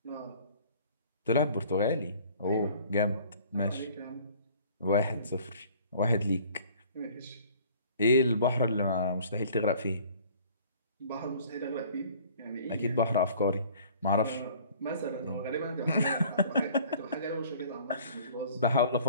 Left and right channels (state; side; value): inverted; both; correlation -0.52